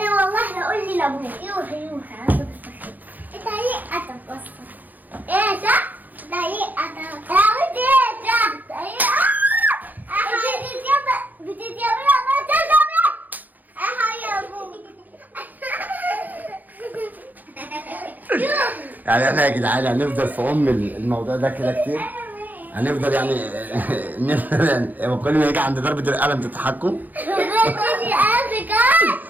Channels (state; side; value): late; left; 0.083 ms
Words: والله هقول لي لابوك. يوحى انت ليه قتل بس؟ ايه صح؟ ده ليه قتل؟ ايه ده؟ ايه بتتيابي ما تجمع يا ابوك. يعني احنا يا جدعان هنفضل في الموضوع ده كده كتير. هنفضل يعني نفضل يعني كل ما يجي عند ضربة القلم تضحكوا.